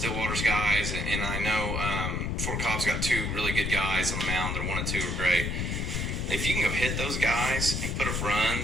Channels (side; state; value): left; noise; rumble, 1 dB below the sound